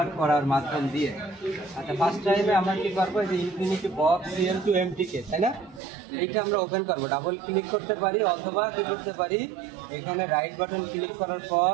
করার মাধ্যম দিয়ে। আচ্ছা, ফার্স্ট টাইমে আমরা কি করবো, এই যে ইনফিনিটি বক্স সিএম টু এমটিকে, তাই না? এইটা আমরা ওপেন করবো, ডাবল ক্লিক করতে পারি অথবা কি করতে পারি, এখানে রাইট বাটন ক্লিক করার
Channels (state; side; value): drops out; left; at 5.8 s